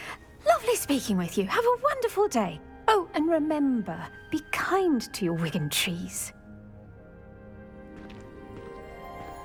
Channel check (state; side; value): identical; both; correlation 1.00